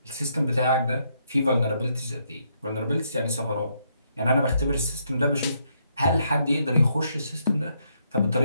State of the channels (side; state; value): both; inverted; correlation -0.75